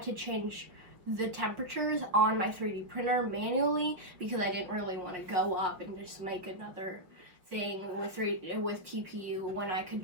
to change the temperatures on my 3D printer manually because I didn't really want to go up and just make another thing with TPU when I could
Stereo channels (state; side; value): late; left; 5.8 ms